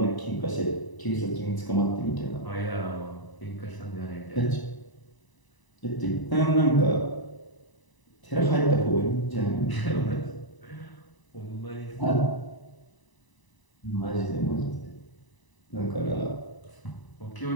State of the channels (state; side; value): late; right; 1.0 ms